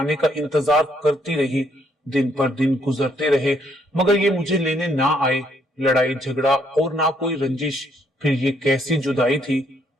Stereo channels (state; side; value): normal; both; correlation 0.70